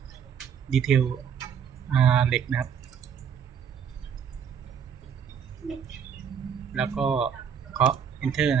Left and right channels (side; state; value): left; quieter; 7.6 dB